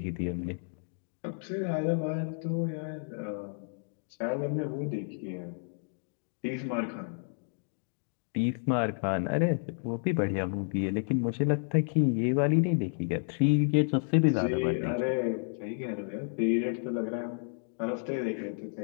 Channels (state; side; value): silent; right; digital silence